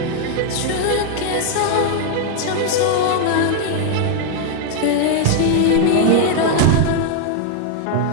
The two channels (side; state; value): both; different; correlation 0.00